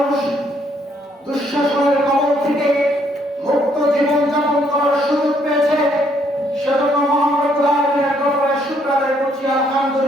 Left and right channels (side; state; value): both; normal; correlation 0.69